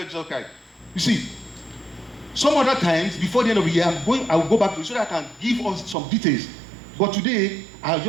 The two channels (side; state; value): left; drops out; at 6.0 s